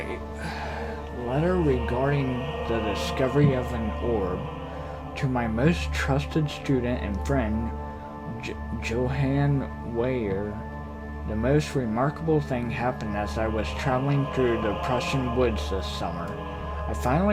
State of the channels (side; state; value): both; identical; correlation 1.00